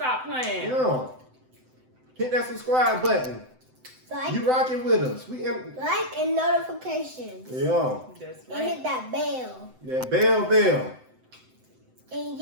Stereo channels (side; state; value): left; late; 7.8 ms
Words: playing. Yeah. Hit that subscribe button. Like, You rocking with us. like and notifications. Yeah. That's And right. hit that bell. That bell. And